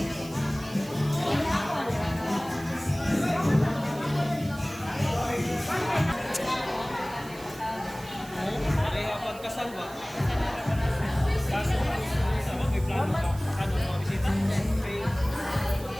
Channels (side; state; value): right; noise; hiss, 19 dB below the sound